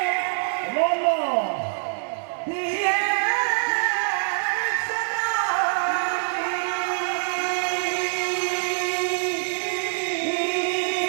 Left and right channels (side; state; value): left; silent; digital silence